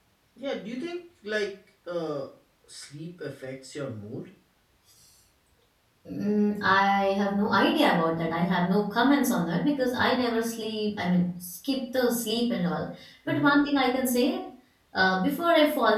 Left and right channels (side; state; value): both; identical; correlation 1.00